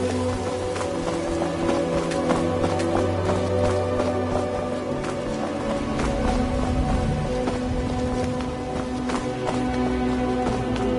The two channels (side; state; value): both; identical; correlation 1.00